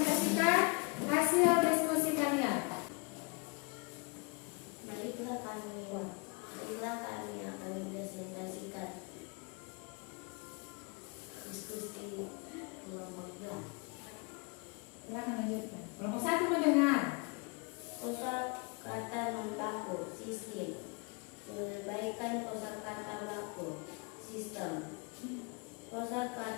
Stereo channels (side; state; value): right; quieter; 31.4 dB